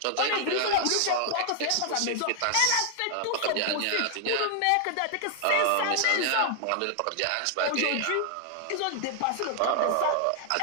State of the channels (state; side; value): different; both; correlation 0.00